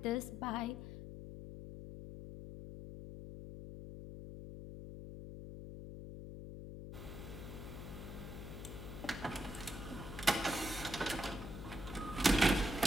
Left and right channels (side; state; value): left; noise; hum, 9 dB below the sound